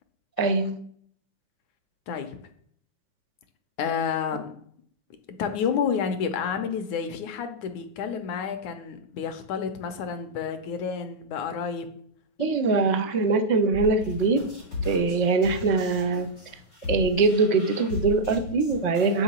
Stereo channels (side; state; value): right; late; 9.7 ms